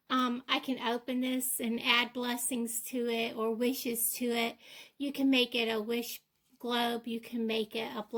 I can open this and add blessings to it or wishes to it. You can make it a wish globe. You can make it a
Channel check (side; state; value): both; identical; correlation 1.00